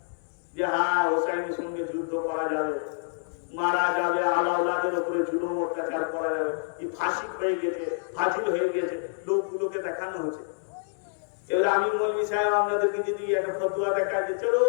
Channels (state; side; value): silent; right; digital silence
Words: যে হ্যাঁ হোসাইনের সঙ্গে যুদ্ধ করা যাবে, মারা যাবে, আলাউলাদের উপরে জুলুম অত্যাচার করা যাবে। এই ফাঁসি হয়ে গেছে, ফাজিল হয়ে গেছে, লোকগুলোকে দেখানো হচ্ছে। এবার আমি মৌলবী সাহেব আপনাদেরকে যদি একটা ফতুয়া দেখা যে চলো